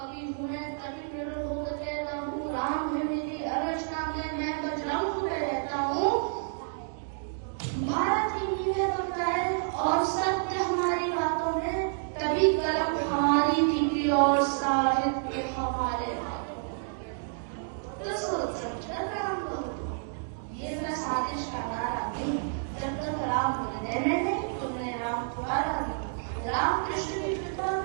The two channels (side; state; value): left; silent; digital silence